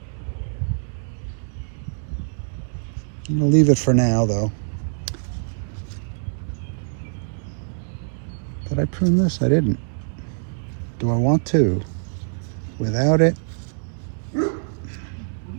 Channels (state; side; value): silent; left; digital silence